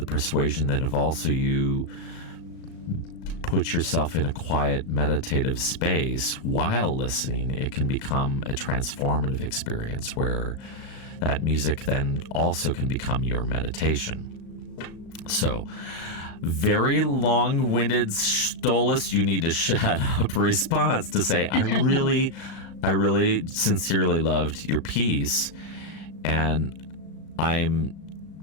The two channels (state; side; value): late; right; 36 ms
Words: persuasion that if also you put yourself in a quiet meditative space while listening, it can become a transformative experience where that music then also can become your meditation. So, very long-winded Stolace, you need to shut up response to say, I really sincerely loved your piece, and I'm